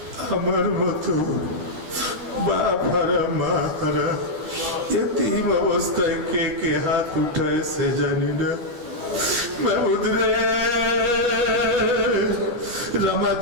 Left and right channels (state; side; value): late; left; 13 ms